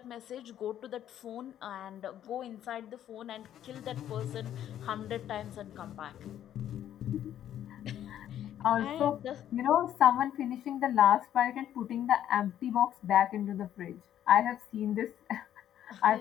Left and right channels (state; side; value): quieter; right; 11.0 dB